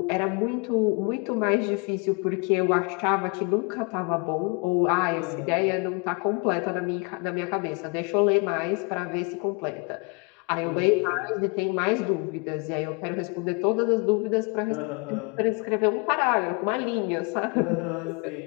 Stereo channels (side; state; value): right; quieter; 32.1 dB